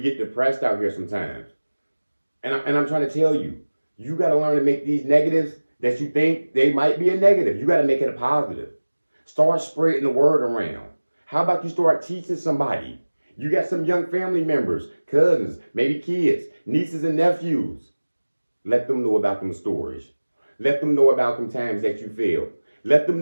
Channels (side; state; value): both; inverted; correlation -1.00